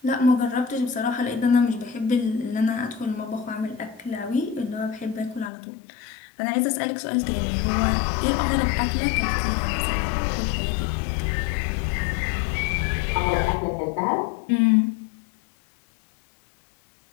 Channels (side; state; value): right; drops out; at 5.5 s